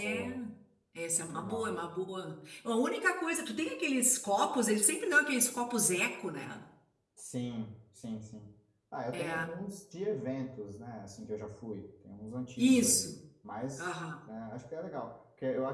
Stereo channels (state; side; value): identical; both; correlation 1.00